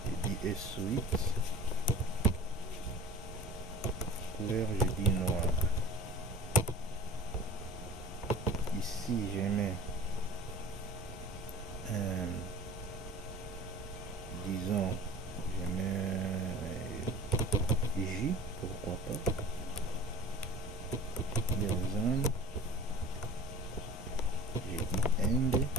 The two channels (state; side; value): normal; both; correlation 0.41